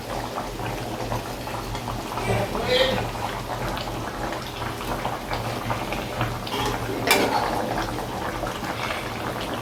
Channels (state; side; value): identical; both; correlation 1.00